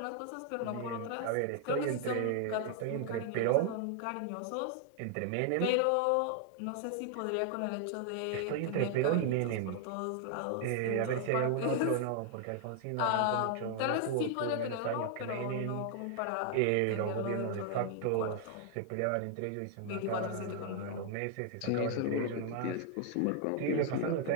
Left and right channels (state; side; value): different; both; correlation 0.00